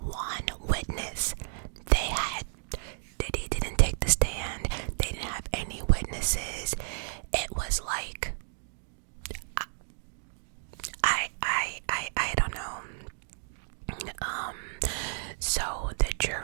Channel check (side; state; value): left; silent; digital silence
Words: witness. Diddy didn't take the stand. They didn't have any witnesses. It was like, I don't know. So the